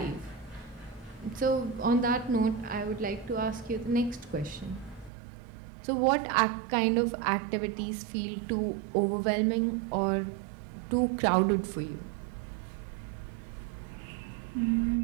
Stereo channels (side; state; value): left; drops out; at 5.1 s